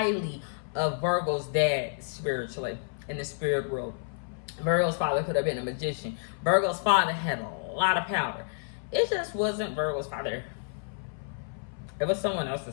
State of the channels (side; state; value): right; silent; 58 dB below the other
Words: of Virgo's dad spiritually in the spirit world. Virgo's father could have been a magician. Virgo's father had a lot of power. It just wasn't Virgo's father. It was someone